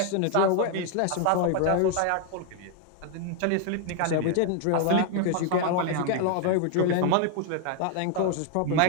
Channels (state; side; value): different; both; correlation 0.00